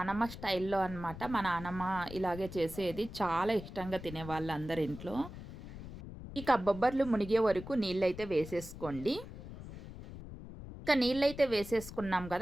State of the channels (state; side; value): noise; left; rumble, 12 dB below the sound